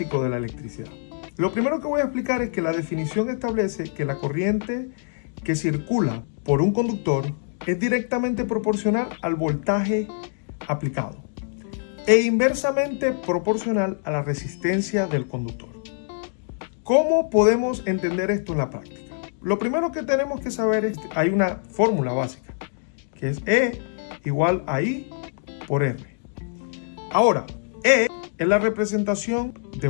de la electricidad. Lo primero que voy a explicar es que la definición establece que la corriente que circula por un conductor es directamente proporcional al voltaje aplicado e inversamente proporcional a la resistencia del conductor. ¿Cómo podemos entender esto en la práctica? Lo primero que tenemos que saber es que hay una fórmula básica, que es E igual a I por R. Ahora, E es la representación de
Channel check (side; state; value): right; silent; digital silence